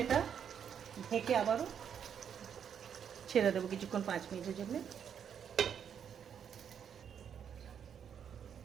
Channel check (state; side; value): quieter; left; 8.1 dB